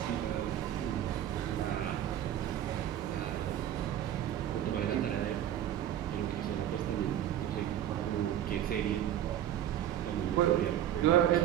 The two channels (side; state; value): left; quieter; 11.1 dB